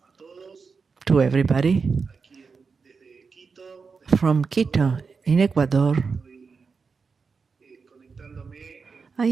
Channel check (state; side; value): quieter; left; 5.0 dB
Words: to everybody Desde Quito. from Quito in Ecuador. I